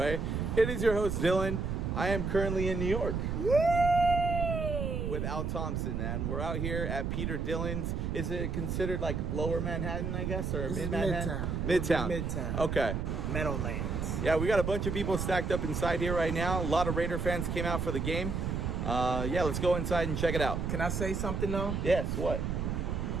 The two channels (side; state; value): right; noise; rumble, 1 dB below the sound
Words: It is your host, Dylan. I am currently in New York with Al Thompson, and we're out here at Peter Dillon's. Is it considered like Lower Manhattan, I guess, or mid-Manhattan? Midtown. Midtown. Okay. Meadowlands. Yeah, we got a bunch of people stacked up inside here right now. A lot of Raider fans came out for the game. Yeah, let's go inside and check it out. Can I say something though? Yes, what?